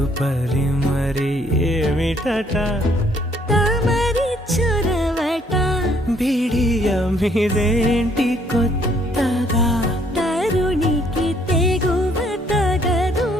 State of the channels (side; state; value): both; normal; correlation 0.65